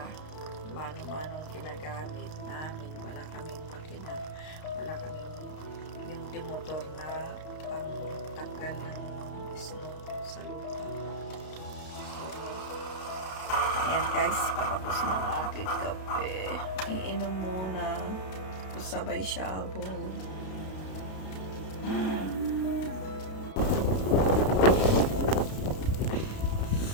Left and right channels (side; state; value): right; late; 32 ms